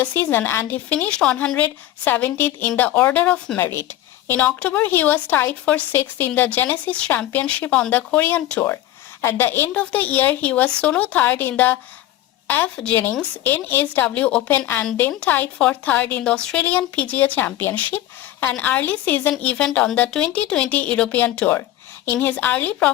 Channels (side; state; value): right; quieter; 14.1 dB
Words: season and he finished 170th in the order of merit. In October, he was tied for 6th in the Genesis Championship on the Korean Tour. At the end of the year, he was solo 3rd in the F. Jennings NSW Open and then tied for 3rd in the Australian PGA Championship, an early season event on the 2020 European Tour. In his early